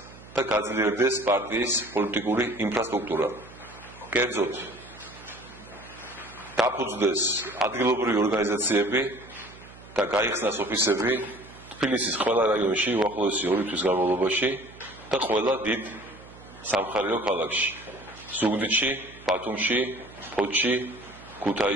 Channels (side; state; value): right; noise; hum, 20 dB below the sound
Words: და გაძლიერდეს პარტიის პოლიტიკური ინფრასტრუქტურა. კერძოდ, დაფუძნდეს ადგილობრივი ორგანიზაციები და გაიხსნას ოფისები თბილისის ყველა რაიონში უახლოესი 2 თვის განმავლობაში და ყველა დიდ სამხარეო ქალაქში: ზუგდიდში, ბათუმში, ფოთში,